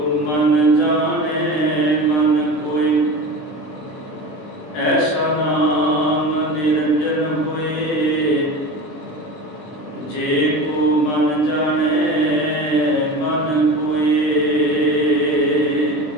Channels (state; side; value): late; right; 20 ms